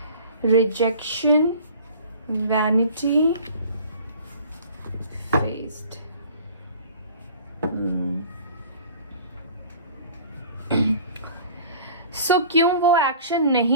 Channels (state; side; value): inverted; both; correlation -0.46